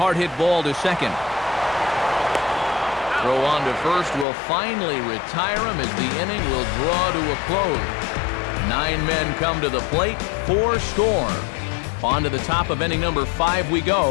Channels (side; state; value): right; drops out; at 4.2 s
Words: hit ball to second. Throw on to first will finally retire him as the inning will draw to a close. 9 men come to the plate, 4 score. On to the top of inning number 5 we